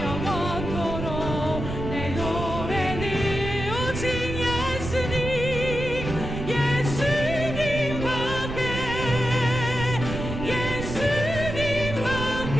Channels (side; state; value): right; noise; rumble, 6 dB below the sound